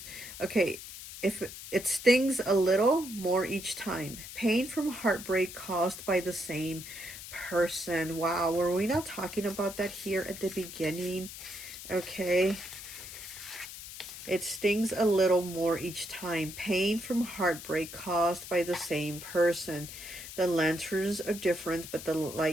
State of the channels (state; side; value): noise; left; hiss, 12 dB below the sound